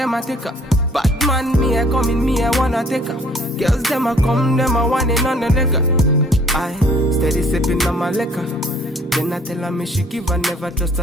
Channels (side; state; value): both; normal; correlation 0.58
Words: a take her. Bad man, me a come in, me a wanna take her. Girls them a come, them a want it on the liquor. I steady sipping on my liquor. Then I tell her me she give her, never trust